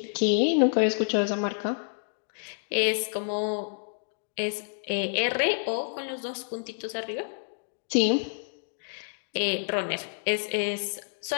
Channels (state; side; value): silent; right; digital silence